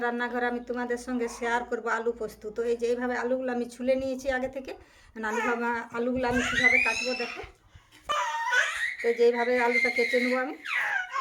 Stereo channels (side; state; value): both; identical; correlation 1.00